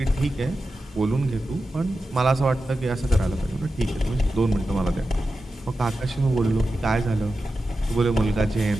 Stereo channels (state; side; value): normal; both; correlation 0.92